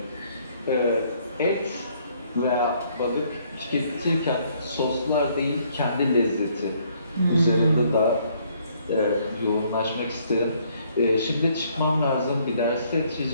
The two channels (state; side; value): inverted; both; correlation -0.66